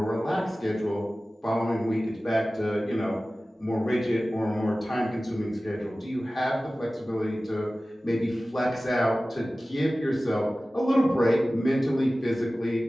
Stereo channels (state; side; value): normal; both; correlation 0.96